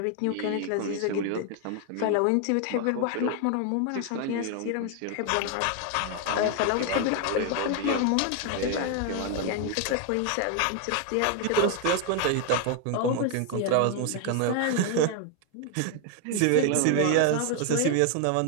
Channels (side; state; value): both; different; correlation 0.01